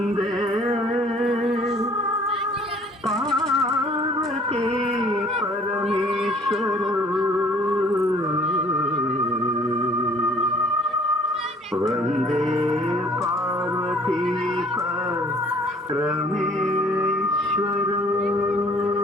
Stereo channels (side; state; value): both; normal; correlation 0.55